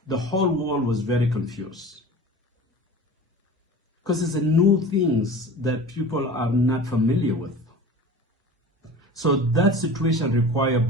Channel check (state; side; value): normal; both; correlation 0.38